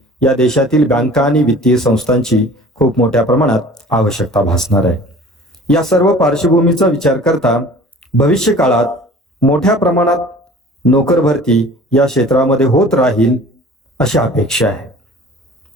या देशातील बँका आणि वित्तीय संस्थांची खूप मोठ्या प्रमाणात आवश्यकता भासणार आहे. या सर्व पार्श्वभूमीचा विचार करता भविष्य काळात मोठ्या प्रमाणात नोकर भरती या क्षेत्रामध्ये होत राहील अशी अपेक्षा आहे.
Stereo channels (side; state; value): both; normal; correlation 0.46